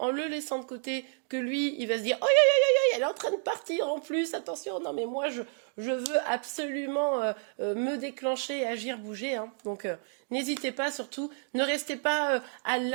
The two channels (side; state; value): left; silent; 58 dB below the other